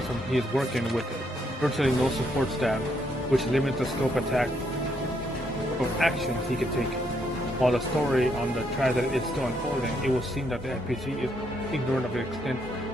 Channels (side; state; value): both; normal; correlation 0.74